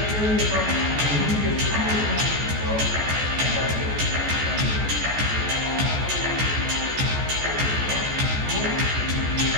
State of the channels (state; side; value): late; left; 14 ms